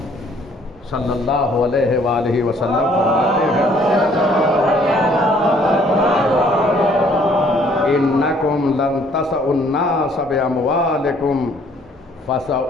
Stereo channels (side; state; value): both; normal; correlation 0.61